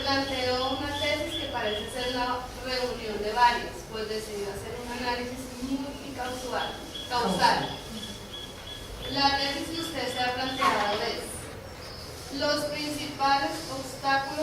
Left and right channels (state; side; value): identical; both; correlation 1.00